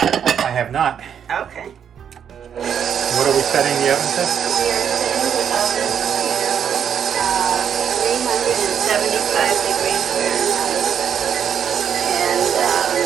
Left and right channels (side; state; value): left; quieter; 8.3 dB